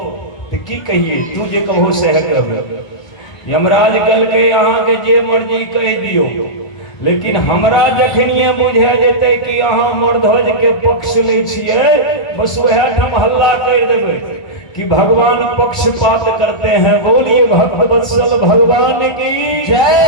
तो की कहिए तू जे कहो से करब। यमराज कहलकै अहाँ के जे मर्जी कह दियो, लेकिन हमरा जखनिए बुझा जेते कि अहाँ मूर्धज के पक्ष ले छिए, बस वह ठाम हल्ला कर देबै कि भगवान पक्षपात करते हैं। बोलिए भक्त वत्सल भगवान की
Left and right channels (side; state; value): right; late; 2.2 ms